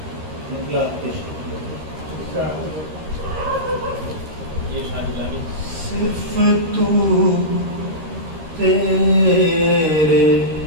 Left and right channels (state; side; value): late; left; 13 ms